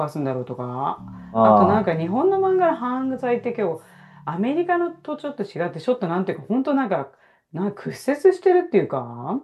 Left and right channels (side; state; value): both; identical; correlation 1.00